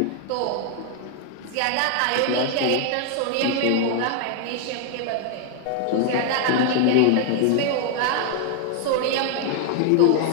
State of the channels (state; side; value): different; both; correlation 0.00